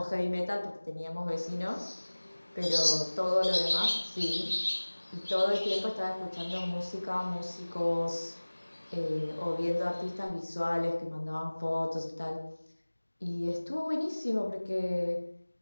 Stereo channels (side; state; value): both; inverted; correlation -1.00